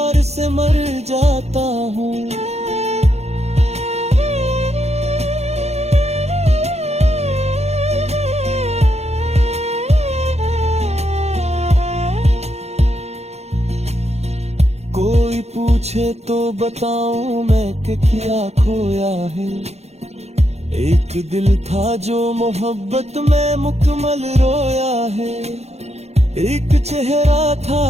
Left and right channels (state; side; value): late; left; 0.31 ms